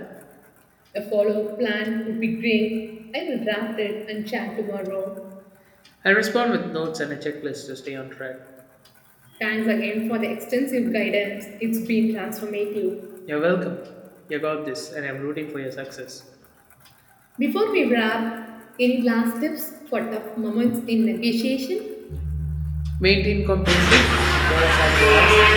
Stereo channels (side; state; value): both; identical; correlation 1.00